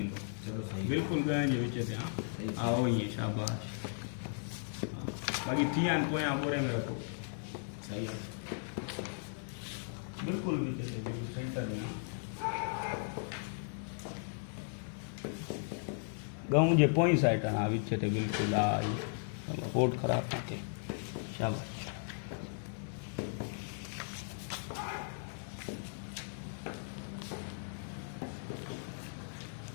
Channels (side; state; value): right; silent; digital silence